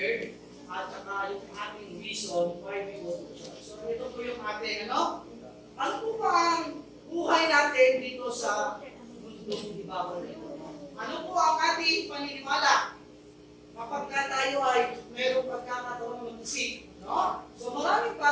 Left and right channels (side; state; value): both; identical; correlation 1.00